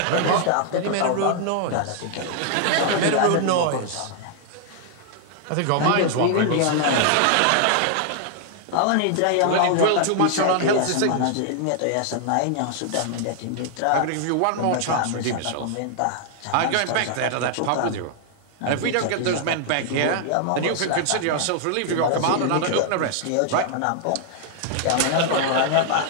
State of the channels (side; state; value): both; different; correlation 0.00